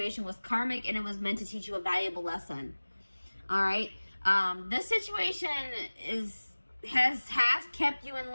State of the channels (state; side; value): inverted; both; correlation -1.00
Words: was karmic and it was meant to teach you a valuable lesson. All right. This situation has kept you in